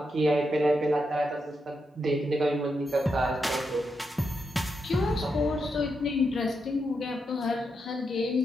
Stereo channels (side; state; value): both; normal; correlation 0.84